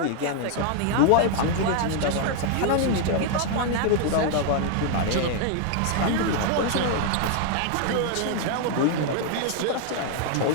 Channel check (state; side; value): different; both; correlation 0.00